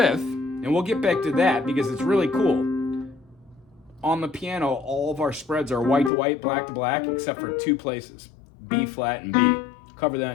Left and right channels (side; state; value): right; drops out; at 6.1 s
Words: and we'll get back to that because it's really cool. On the piano, all of our spreads are white to white, black to black, except for 2 places, B flat and B. Cover that